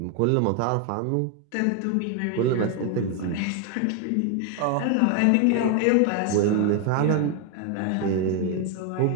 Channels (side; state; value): both; different; correlation 0.01